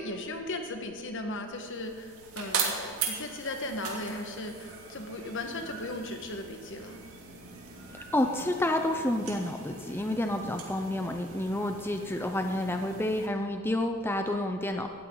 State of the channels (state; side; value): noise; left; rumble, 26 dB below the sound